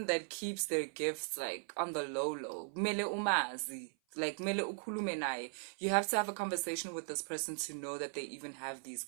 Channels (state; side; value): silent; left; 52 dB below the other